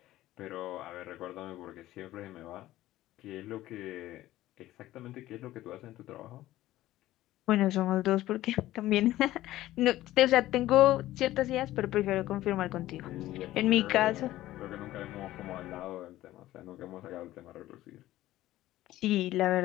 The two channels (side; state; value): right; quieter; 15.3 dB